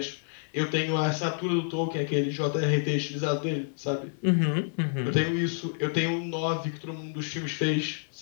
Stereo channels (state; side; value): silent; right; 59 dB below the other